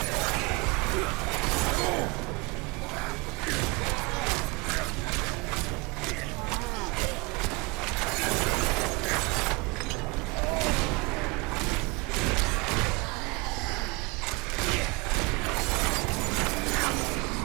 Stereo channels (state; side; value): quieter; left; 26.6 dB